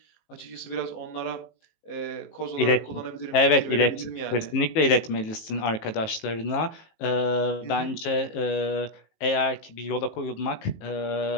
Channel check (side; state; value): right; late; 18 ms